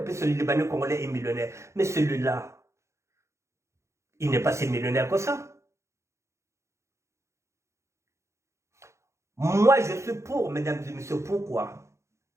puisque le Libanais congolais est millionnaire. Mais celui-là, il n'est pas si millionnaire que ça. Moi, je suis pour, mesdames et messieurs. Pourquoi?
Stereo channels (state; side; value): late; left; 0.14 ms